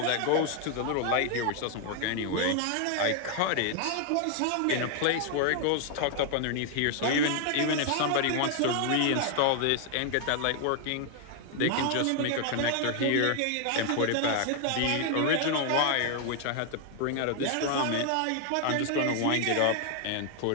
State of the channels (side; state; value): both; different; correlation 0.00